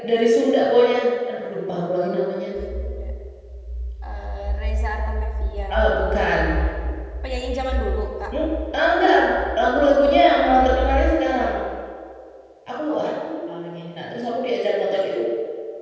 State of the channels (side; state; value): both; identical; correlation 1.00